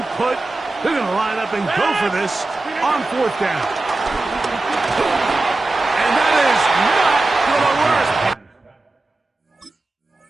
put. They're going to line up and go for this on 4th down.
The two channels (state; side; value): quieter; left; 3.1 dB